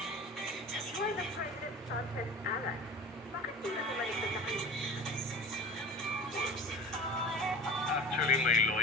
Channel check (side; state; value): both; normal; correlation 0.35